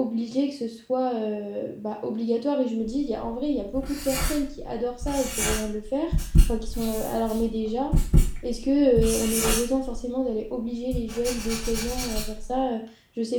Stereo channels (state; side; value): identical; both; correlation 1.00